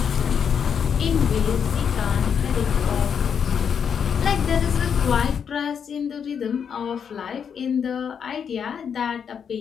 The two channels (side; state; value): right; quieter; 7.3 dB